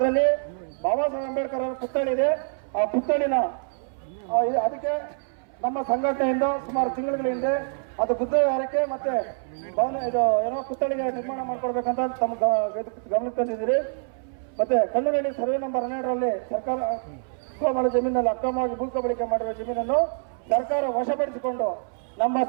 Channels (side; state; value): left; silent; 61 dB below the other